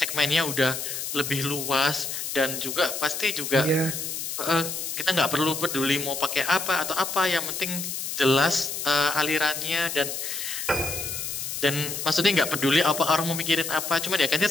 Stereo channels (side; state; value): left; noise; hiss, 5 dB below the sound